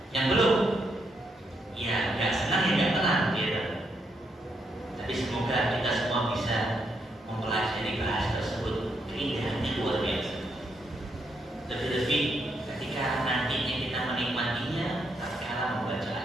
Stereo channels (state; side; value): normal; both; correlation 0.78